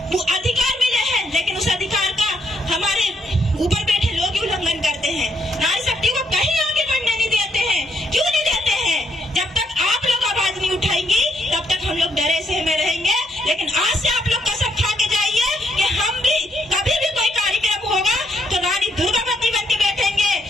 वो अधिकार मिले हैं, लेकिन उस अधिकार का हमारे ऊपर बैठे लोग ही उल्लंघन करते हैं। नारी शक्ति को कहीं आगे बढ़ने नहीं देते हैं। क्यों नहीं देते हैं? जब तक आप लोग आवाज नहीं उठाएंगी तब तक हम लोग डरे से में रहेंगे। लेकिन आज से आप लोग कसम खा के जाइए कि हम भी कभी भी कोई कार्यक्रम होगा तो रानी दुर्गावती बन के बैठेंगे,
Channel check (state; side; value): normal; both; correlation 0.74